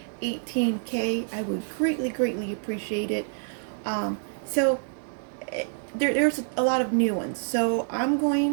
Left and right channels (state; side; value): silent; left; digital silence